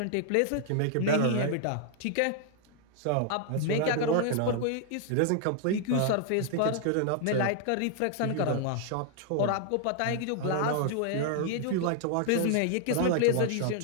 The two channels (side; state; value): both; different; correlation 0.00